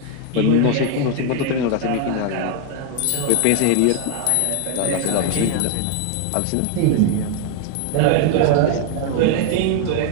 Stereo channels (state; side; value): different; both; correlation 0.01